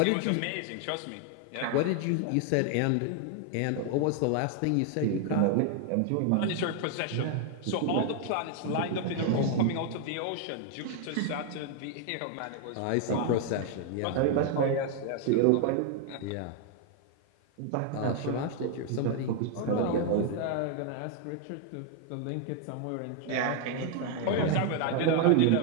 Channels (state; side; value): different; both; correlation 0.00